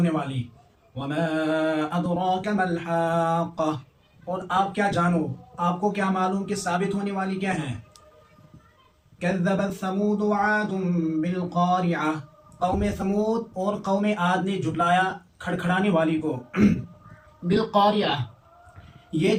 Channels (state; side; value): identical; both; correlation 1.00